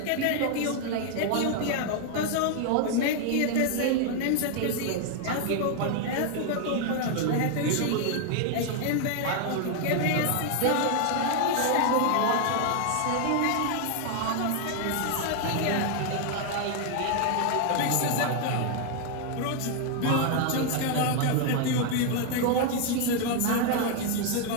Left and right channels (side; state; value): both; different; correlation 0.00